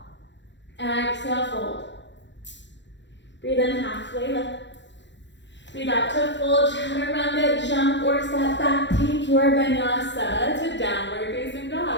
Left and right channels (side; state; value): right; late; 0.52 ms